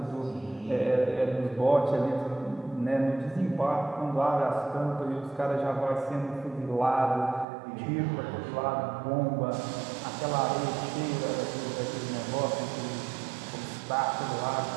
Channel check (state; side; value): drops out; left; at 7.5 s